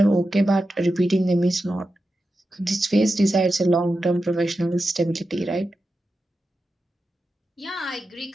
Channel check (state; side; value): normal; both; correlation 0.91